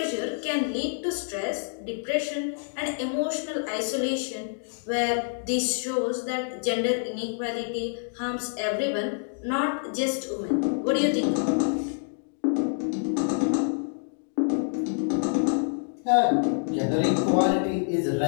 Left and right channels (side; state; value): right; silent; digital silence